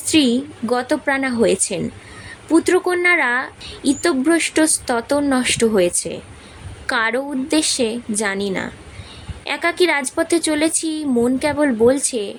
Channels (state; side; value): identical; both; correlation 1.00